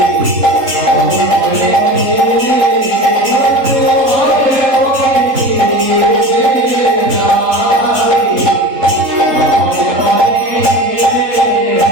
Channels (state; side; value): late; left; 3.8 ms